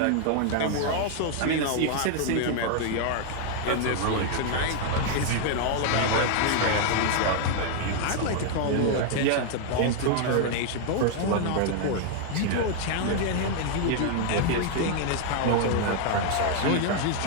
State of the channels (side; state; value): both; different; correlation 0.00